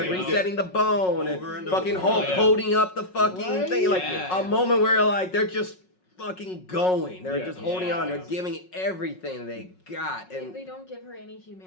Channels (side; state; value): right; late; 5.4 ms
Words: resetting the bone and fucking Hulk holding up the fucking thing. Like a moment where like they're just fucking going. They're just holding on. They're giving everything they got, and they don't give her any